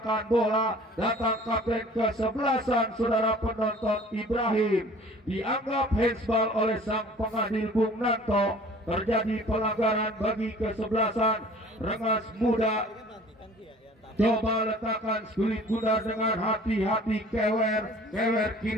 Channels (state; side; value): normal; both; correlation 0.49